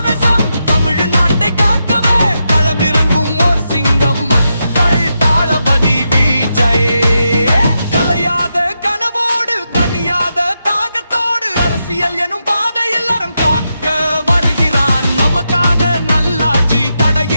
தமிழ்நாட்டை காக்கவே களமிறங்கும் ஓர் சிங்கம். மக்கள் தளபதி விஜய். கலையாத கனவோடு தனியாத தாகத்தோடு அரசியல் எனும் பாதையில் அறம் காக்க வருகிறான். நமக்கான நல்லாட்சி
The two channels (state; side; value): inverted; both; correlation -0.85